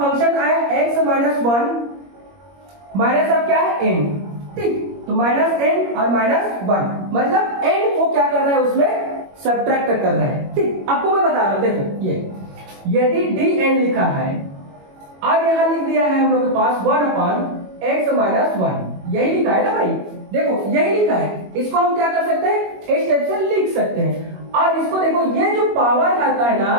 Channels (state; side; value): late; left; 21 ms